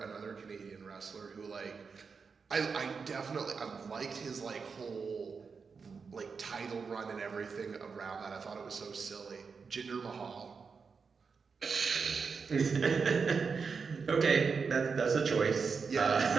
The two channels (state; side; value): quieter; left; 5.3 dB